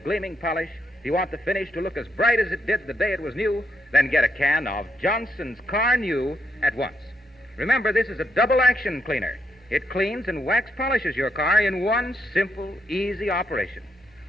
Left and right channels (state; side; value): normal; both; correlation 0.78